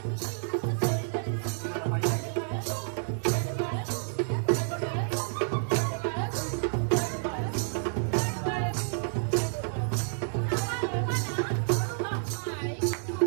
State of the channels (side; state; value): left; silent; digital silence